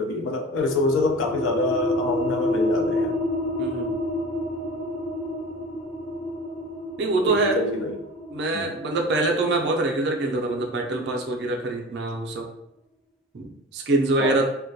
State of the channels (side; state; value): both; normal; correlation 0.37